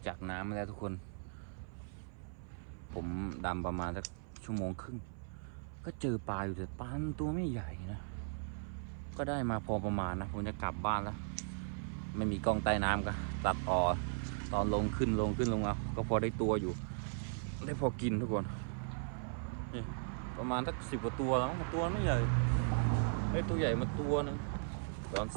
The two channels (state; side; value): silent; left; 53 dB below the other